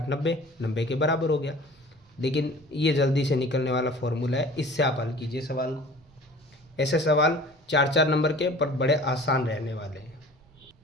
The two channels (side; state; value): both; normal; correlation 0.44